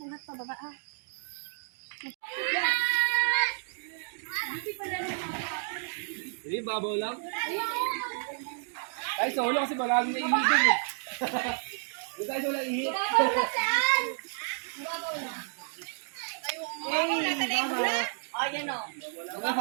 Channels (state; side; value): silent; left; 57 dB below the other